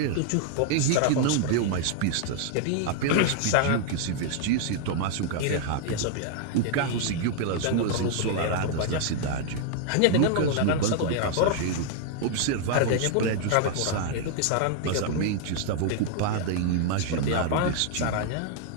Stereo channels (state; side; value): different; both; correlation 0.00